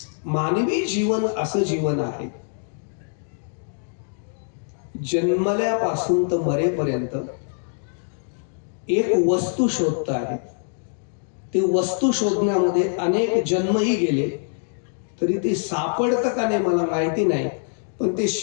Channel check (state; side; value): silent; right; digital silence